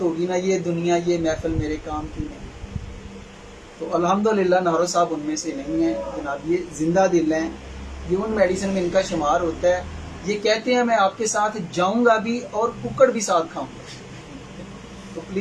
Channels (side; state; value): both; identical; correlation 1.00